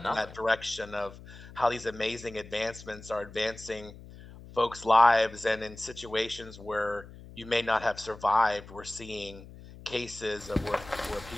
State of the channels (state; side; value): noise; left; hum, 17 dB below the sound